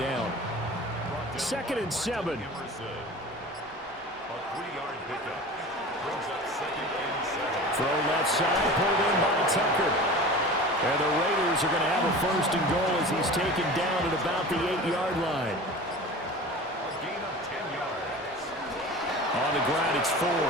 2nd and 7. A 3-yard pickup. Brings up second and 7. Throw left side, pulled in by Tucker. And the Raiders are going to have a 1st and goal as he's taken down at about the 8-yard line. A gain of 10 yards. On the ground, it's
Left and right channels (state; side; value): normal; both; correlation 0.36